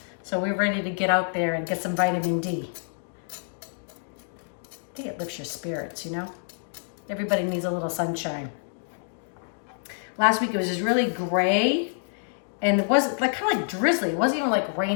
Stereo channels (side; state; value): right; silent; digital silence